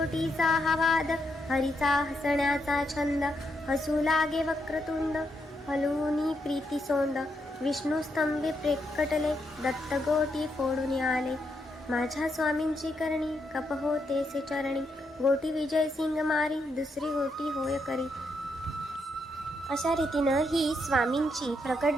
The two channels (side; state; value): both; normal; correlation 0.79